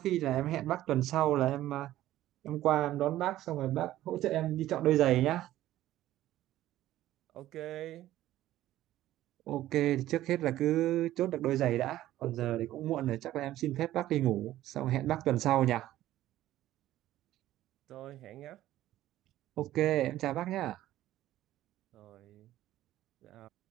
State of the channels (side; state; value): left; quieter; 14.2 dB